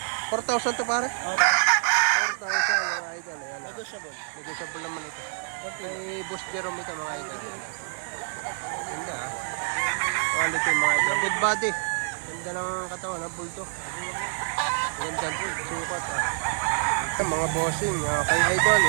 4,000 to pare? 4,000 mga idol. Ayan Negotiable. Negotiable naman ito. May Boss Jerome ito mga idol. Ganda quality mga idol. Good body. Ganda ng katawan ha, bulldog. Ganda po, sukat Ito mga bossing, kay idol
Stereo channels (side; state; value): left; silent; 60 dB below the other